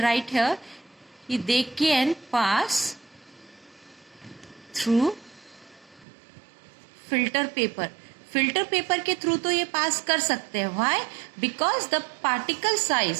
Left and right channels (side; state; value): left; drops out; at 6.1 s